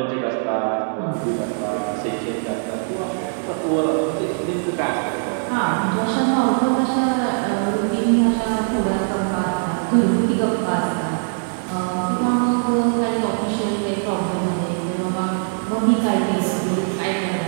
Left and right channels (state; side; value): silent; left; digital silence